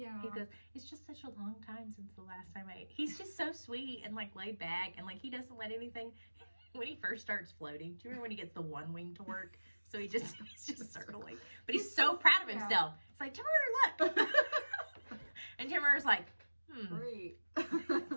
He goes, it's just such a long time since the last time I ate. He's just so sweet and like laid back, and like he doesn't let anything. When he first starts floating, do you remember when he gets the one wing to work? So he's just circling, but he's so proud of himself. It's like, Temeraire, look, and Temeraire's like, great, got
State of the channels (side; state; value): both; inverted; correlation -1.00